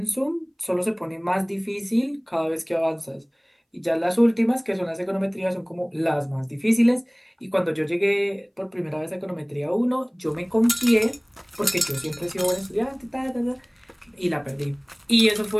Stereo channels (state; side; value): identical; both; correlation 1.00